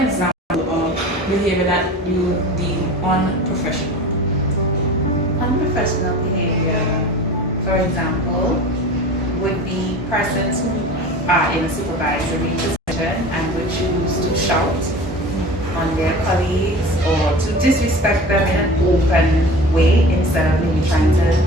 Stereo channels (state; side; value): normal; both; correlation 0.38